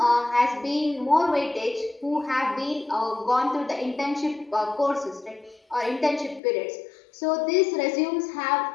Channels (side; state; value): right; drops out; at 6.4 s